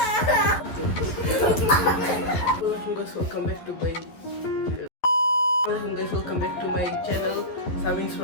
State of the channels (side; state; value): right; late; 12 ms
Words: welcome back to my channel Samin's